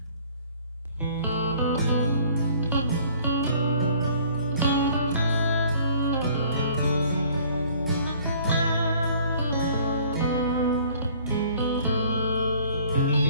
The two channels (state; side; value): inverted; both; correlation -0.55